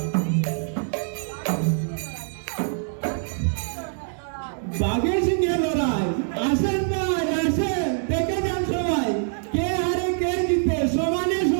বাঘের সঙ্গে লড়াই, আসেন ভাই আসেন, দেখে যান সবাই, কে হারে কে জিতে, সমানে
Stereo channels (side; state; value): left; silent; digital silence